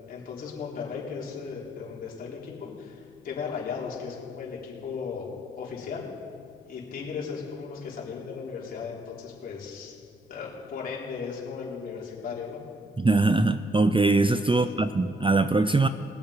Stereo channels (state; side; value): normal; both; correlation 0.71